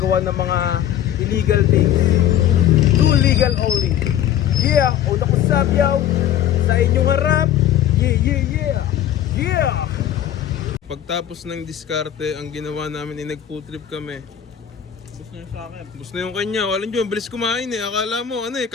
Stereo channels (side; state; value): right; quieter; 10.6 dB